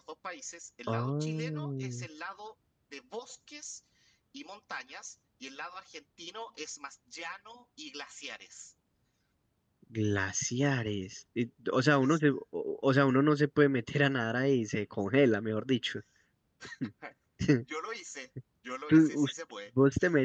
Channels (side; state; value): both; identical; correlation 1.00